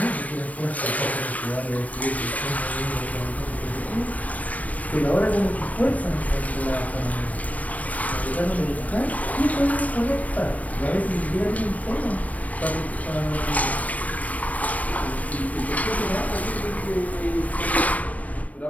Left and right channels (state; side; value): late; right; 0.070 ms